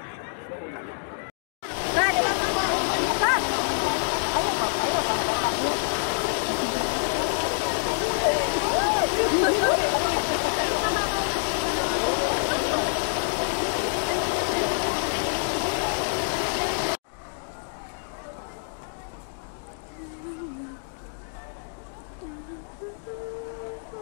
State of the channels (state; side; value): silent; right; digital silence